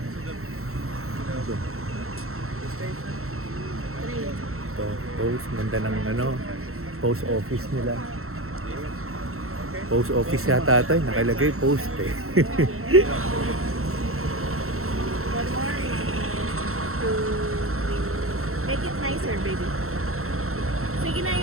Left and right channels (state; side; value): late; left; 0.63 ms